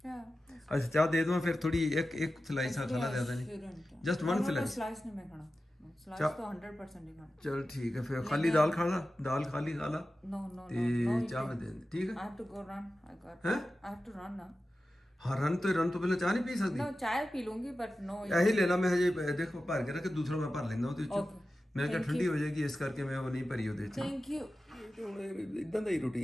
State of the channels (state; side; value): normal; both; correlation 0.94